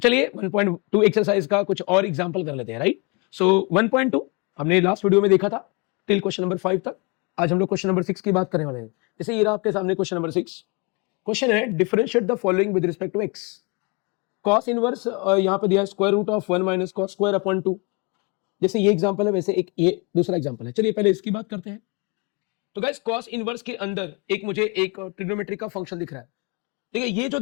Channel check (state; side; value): quieter; right; 30.4 dB